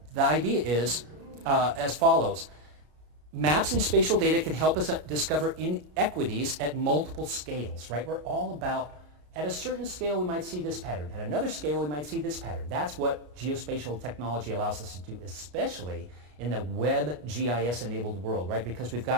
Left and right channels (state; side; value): late; left; 33 ms